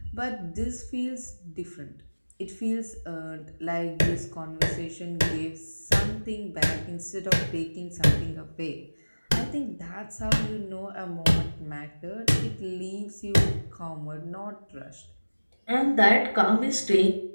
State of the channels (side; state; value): both; inverted; correlation -1.00